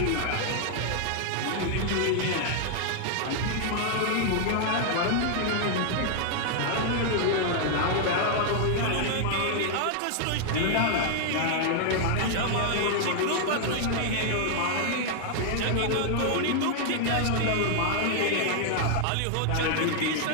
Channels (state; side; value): different; both; correlation 0.00